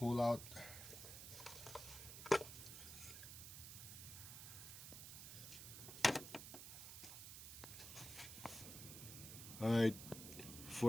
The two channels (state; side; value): noise; right; hiss, 10 dB below the sound